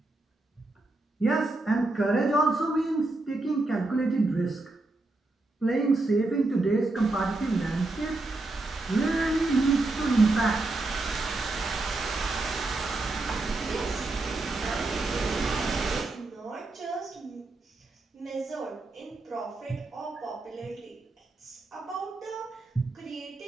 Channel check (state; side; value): quieter; left; 3.0 dB